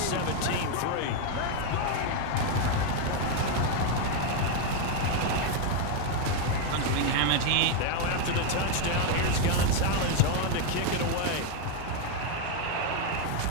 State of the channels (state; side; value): different; both; correlation 0.01